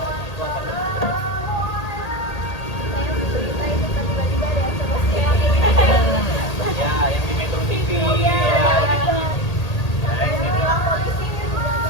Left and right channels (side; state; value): right; late; 1.8 ms